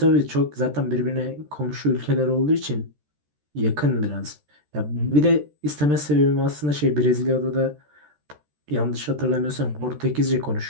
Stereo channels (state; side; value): late; left; 13 ms